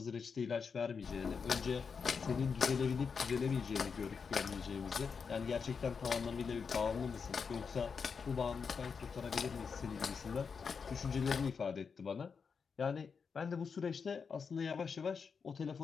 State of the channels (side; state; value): right; quieter; 5.8 dB